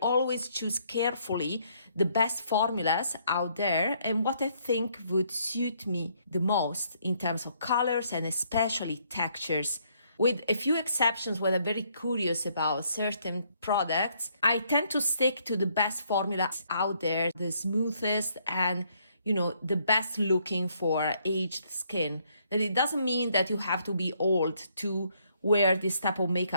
always choose carefully the best formulas out there and what I think would suit me the most in terms of colors and especially textures. With a few exceptions where I'm very curious about certain products, I tend to stick to the best formulas out there, the smoothest and the best looking for aged skin. That it doesn't mean that you have to be old to wear this type of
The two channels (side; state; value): both; inverted; correlation -0.69